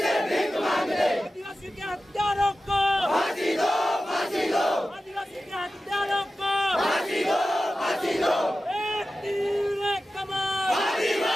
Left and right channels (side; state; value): both; normal; correlation 0.94